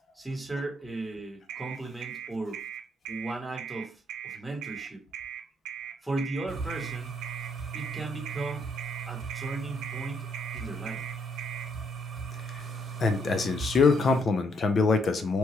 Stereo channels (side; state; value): both; normal; correlation 0.72